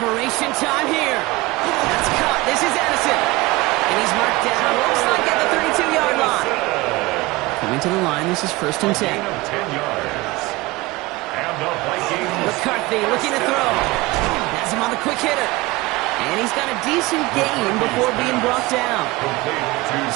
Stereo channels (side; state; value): left; quieter; 21.3 dB